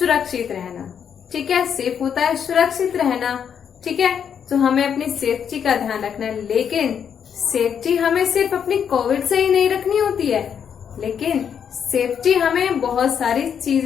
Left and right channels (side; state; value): right; quieter; 7.9 dB